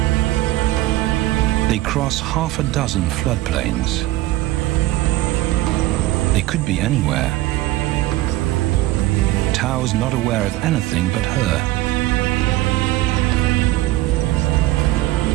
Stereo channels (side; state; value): left; quieter; 16.8 dB